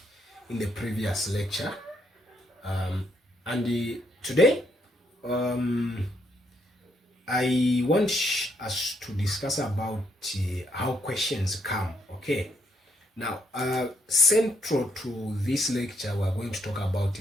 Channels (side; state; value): both; normal; correlation 0.74